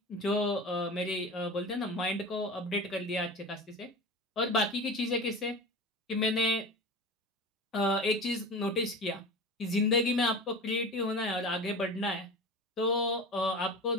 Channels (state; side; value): normal; both; correlation 0.32